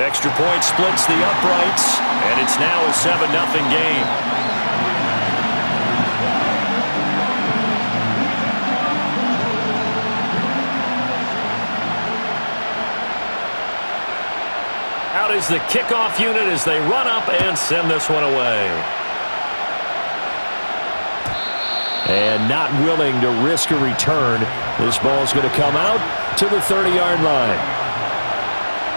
Extra point splits the uprights, and it's now a 7-0 game. Out is the kickoff unit as they run up and send this one away. And not willing to risk a return. This ball's going to come out to the 30-yard line.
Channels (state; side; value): inverted; both; correlation -1.00